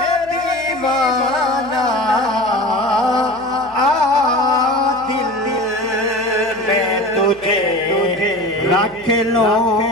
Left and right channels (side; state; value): left; noise; hum, 25 dB below the sound